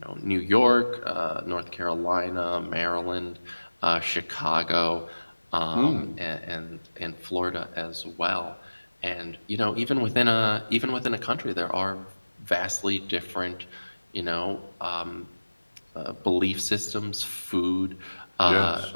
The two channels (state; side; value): inverted; both; correlation -1.00